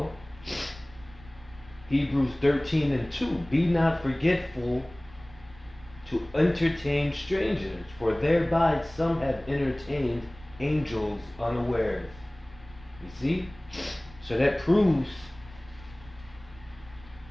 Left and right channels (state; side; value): noise; right; rumble, 22 dB below the sound